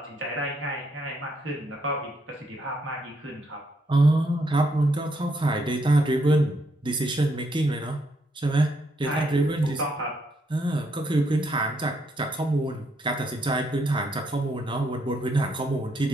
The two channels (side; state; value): both; normal; correlation 0.75